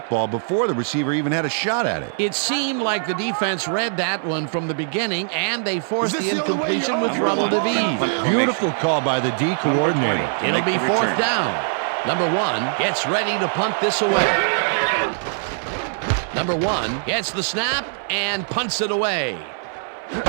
before the receiver even had a shot at it. It seemed like the defense read that one from the beginning, and they forced the incompletion with Rebel DeVee. Beautiful call by the D coordinator. It'll be 4th down. Number 1 gets ready to punt this away. number 1 gets the snap and punts it away.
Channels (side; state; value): left; silent; 62 dB below the other